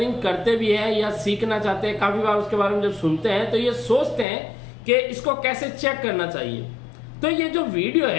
करते भी हैं या सीखना चाहते हैं, काफी बार उसके बारे में जब सुनते हैं तो ये सोचते हैं कि इसको कैसे चेक करना चाहिए। तो ये जो वीडियो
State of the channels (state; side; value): drops out; right; at 4.2 s